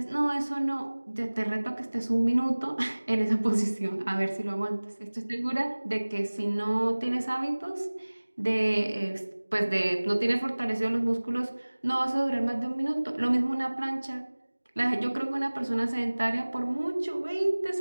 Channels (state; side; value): inverted; both; correlation -1.00